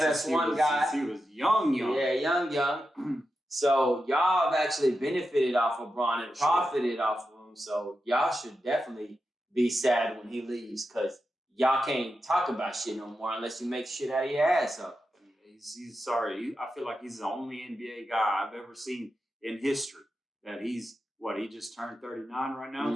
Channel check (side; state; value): both; normal; correlation 0.89